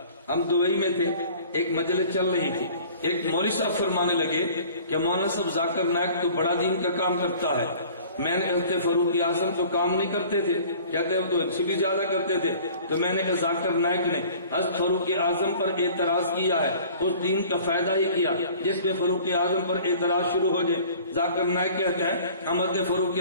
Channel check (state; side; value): inverted; both; correlation -0.48